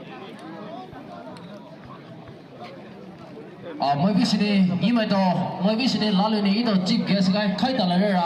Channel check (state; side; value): identical; both; correlation 1.00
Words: Mới biết gì ý mày đó mới biết gì lá lưỡi này đó chỉ cái cái khai tờ lại